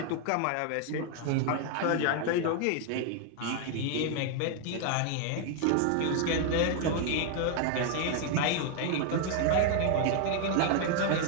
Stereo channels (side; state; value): both; different; correlation 0.00